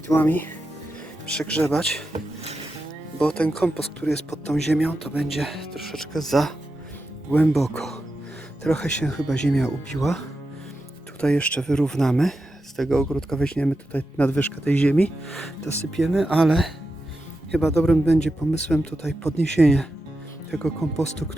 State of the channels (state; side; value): normal; both; correlation 0.89